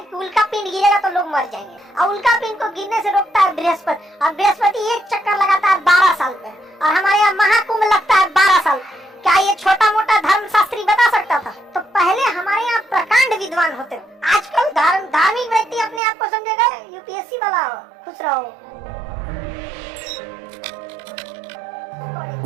कि उल्का पिंड गिरेगा तो लोग मर जाएंगे, और उल्का पिंड को गिरने से रोकता है बृहस्पति, और बृहस्पति एक चक्कर लगाता है 12 साल पे, और हमारे यहाँ महाकुंभ लगता है 12 साल। क्या ये छोटा मोटा धर्मशास्त्री बता सकता था? तो पहले हमारे यहाँ प्रकांड विद्वान होते थे। आजकल धार्मिक व्यक्ति अपने आप को समझेगा यूपीएससी वाला। खुश रहो।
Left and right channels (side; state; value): left; drops out; at 16.0 s